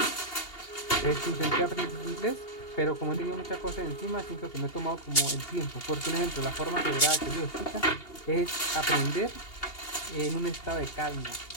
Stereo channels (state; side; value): late; right; 2.8 ms